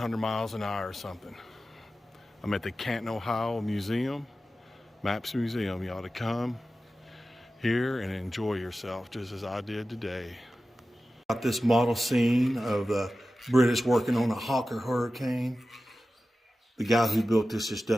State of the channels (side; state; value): both; normal; correlation 0.94